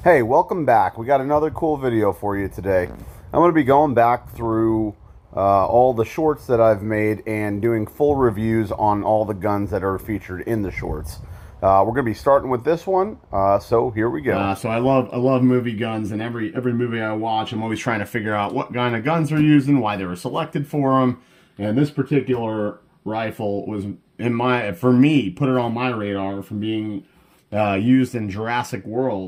Hey, welcome back. We got another cool video for you today. I'm going to be going back through all the shorts that I've made and doing full reviews on all the guns that are featured in the shorts. We're going to be starting with this one, so here we go. So I love movie guns, and every movie I watch, I'm always trying to figure out what kind of guns they're using, why they were selected for them. And this particular rifle was for me, put it on my radar from being used in Jurassic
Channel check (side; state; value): both; identical; correlation 1.00